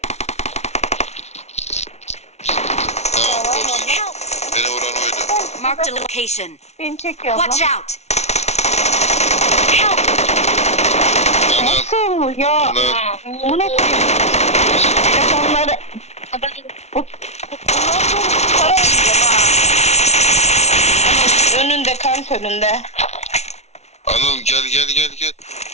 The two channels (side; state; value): right; late; 0.32 ms